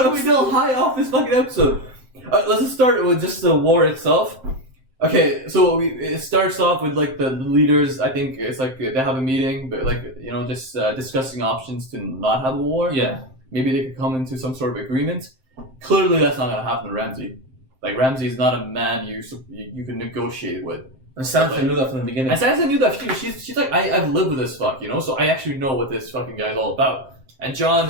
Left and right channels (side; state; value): left; late; 7.6 ms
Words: still high off this fucking episode. Let's just start with just the war itself. Okay, so it starts off with like the leaders. I think it's like they have a meeting, but like just discussing options to not have a war. Yeah. Maybe they could come into some sort of agreement. Clearly, that's not gonna happen to Ramsay. Like Ramsay is not a man you can negotiate with. And Sansa knew that from the beginning. And Sansa knew that too. She's like, I've lived with this fuck, so I actually know what this fucking guy is all about. And